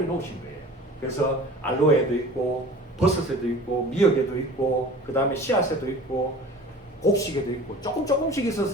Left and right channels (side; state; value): both; normal; correlation 0.42